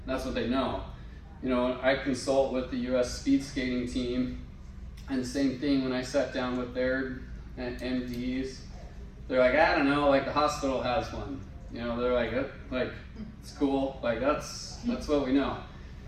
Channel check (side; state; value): both; identical; correlation 1.00